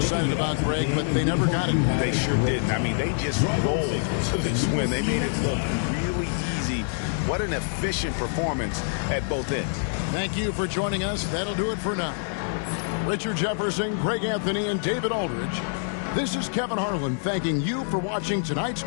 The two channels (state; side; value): silent; right; 61 dB below the other